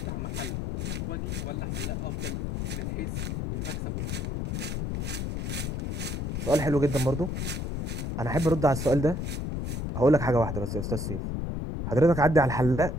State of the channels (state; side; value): noise; left; rumble, 2 dB below the sound